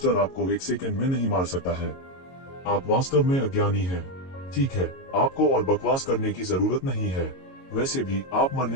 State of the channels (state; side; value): late; right; 22 ms